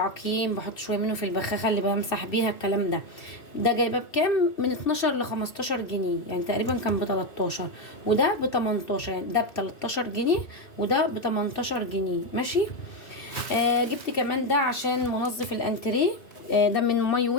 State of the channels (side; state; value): right; late; 2.6 ms